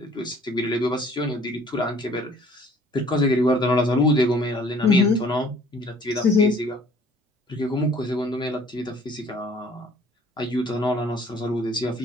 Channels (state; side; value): normal; both; correlation 0.56